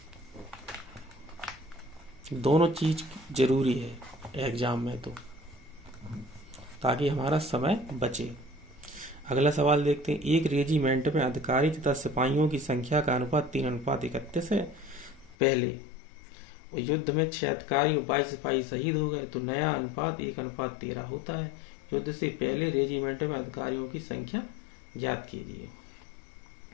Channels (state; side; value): drops out; right; at 15.4 s